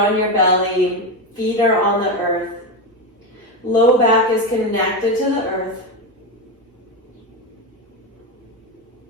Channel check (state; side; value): normal; both; correlation 0.14